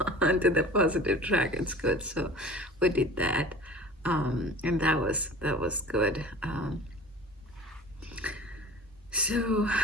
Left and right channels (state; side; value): normal; both; correlation 0.41